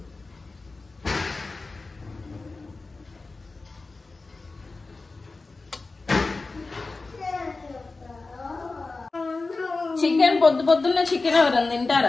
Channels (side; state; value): right; quieter; 3.6 dB